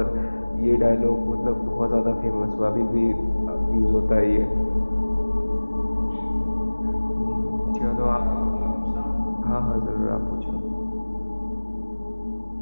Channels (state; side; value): inverted; both; correlation -1.00